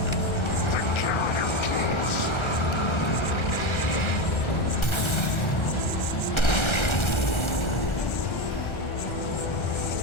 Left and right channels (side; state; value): right; late; 1.3 ms